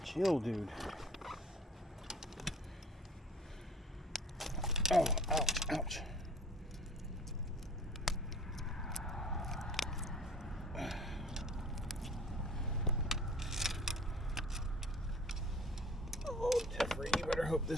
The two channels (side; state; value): both; normal; correlation 0.47